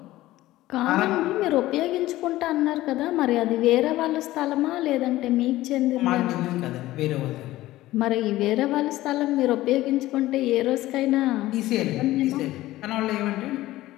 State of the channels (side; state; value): right; quieter; 16.4 dB